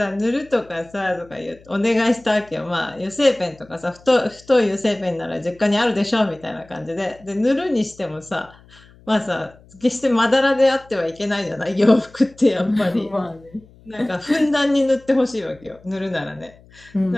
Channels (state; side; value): noise; left; hum, 26 dB below the sound